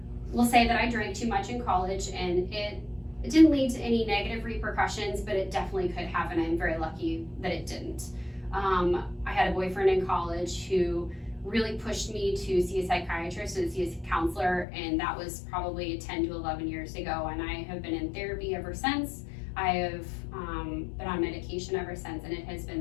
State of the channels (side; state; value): right; drops out; at 14.7 s